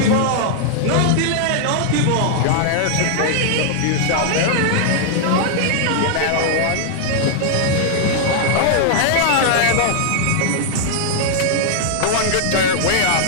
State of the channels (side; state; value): both; different; correlation -0.01